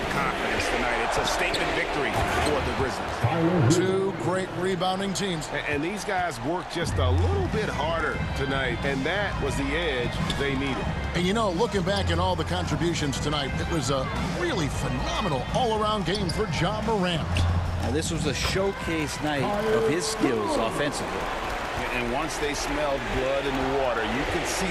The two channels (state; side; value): identical; both; correlation 1.00